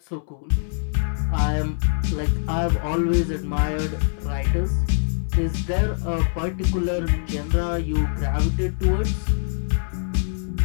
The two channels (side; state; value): right; silent; 63 dB below the other